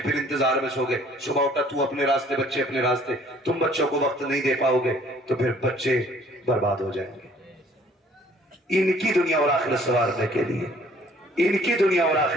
انتظار میں سو گئے، صبح اٹھا تو اپنے راستے بچے اپنے راستے، تم بچوں کو وقت نہیں دے پاؤ گے تو پھر بچے برباد ہو جائیں گے۔ ان کی دنیا اور آخرت سنوارنے کے لیے ان کی دنیا اور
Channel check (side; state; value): both; normal; correlation 0.57